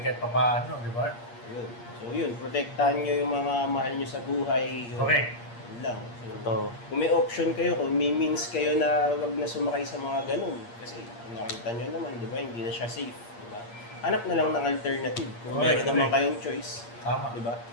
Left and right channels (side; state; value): right; late; 8.5 ms